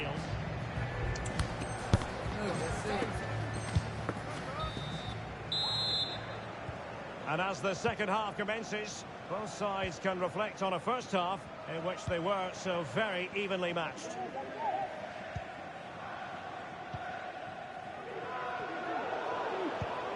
And as the second half commences, both sides can reflect on a first half in which they were so very evenly matched.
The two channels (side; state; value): both; identical; correlation 1.00